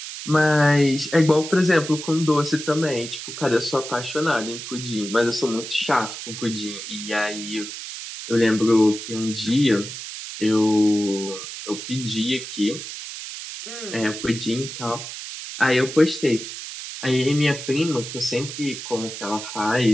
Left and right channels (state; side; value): noise; right; hiss, 9 dB below the sound